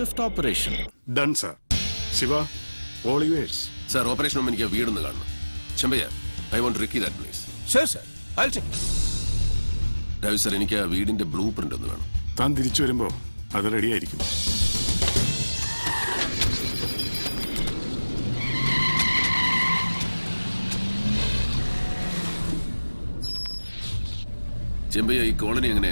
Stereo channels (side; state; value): both; inverted; correlation -1.00